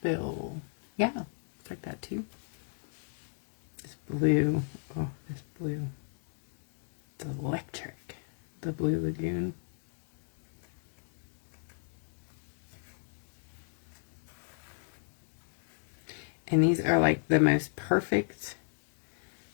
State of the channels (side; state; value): right; silent; digital silence